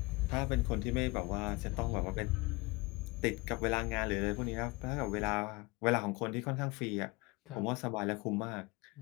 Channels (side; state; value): right; quieter; 24.7 dB